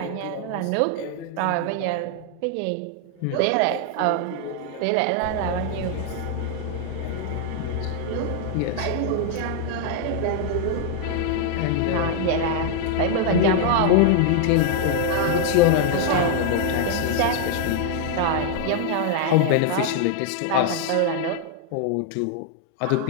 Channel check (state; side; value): different; both; correlation 0.00